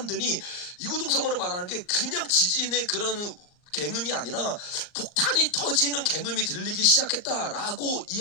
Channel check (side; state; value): right; late; 39 ms